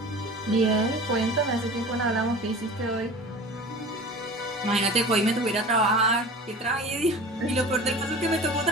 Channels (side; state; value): both; normal; correlation 0.38